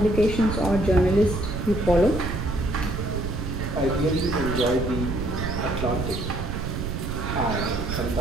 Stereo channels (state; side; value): noise; right; rumble, 4 dB below the sound